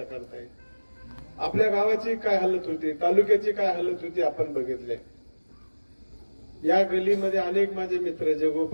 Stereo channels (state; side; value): inverted; both; correlation -1.00